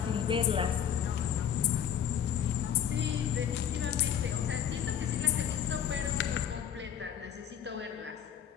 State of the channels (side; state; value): right; quieter; 9.0 dB